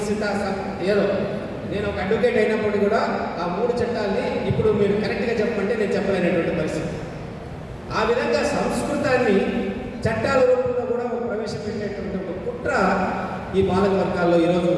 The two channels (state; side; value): identical; both; correlation 1.00